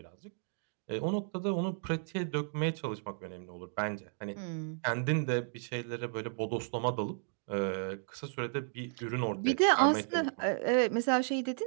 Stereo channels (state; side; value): silent; left; digital silence